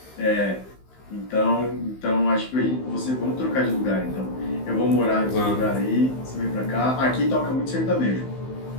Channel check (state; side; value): late; right; 15 ms